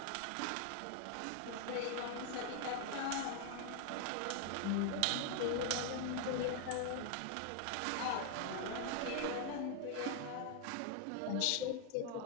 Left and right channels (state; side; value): different; both; correlation 0.00